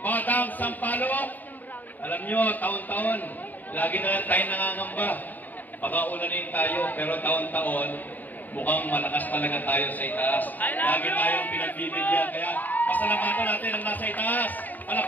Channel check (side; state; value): right; late; 0.085 ms